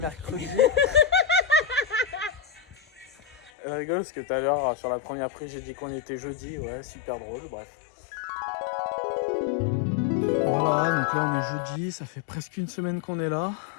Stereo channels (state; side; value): drops out; right; at 3.5 s